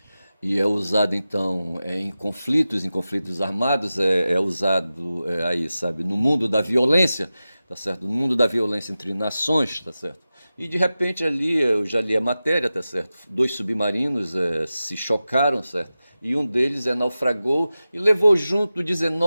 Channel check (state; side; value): inverted; both; correlation -0.94